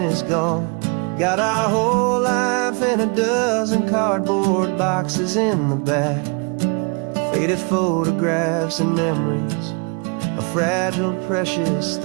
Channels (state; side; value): quieter; left; 34.4 dB